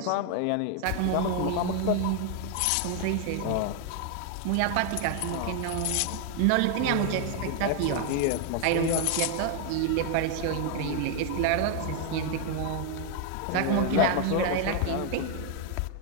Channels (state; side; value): different; both; correlation 0.00